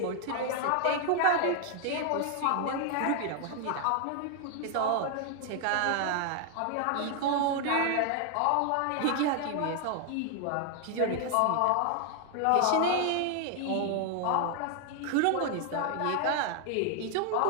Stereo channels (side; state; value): both; different; correlation 0.00